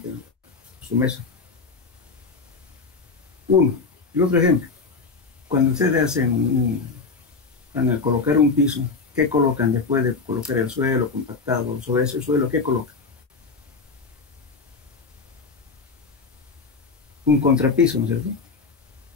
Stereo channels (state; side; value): quieter; right; 4.4 dB